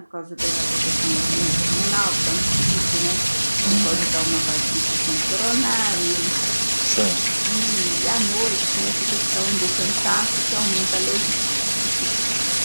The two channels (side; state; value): both; inverted; correlation -1.00